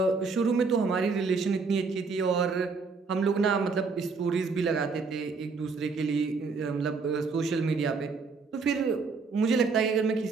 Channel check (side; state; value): left; quieter; 4.6 dB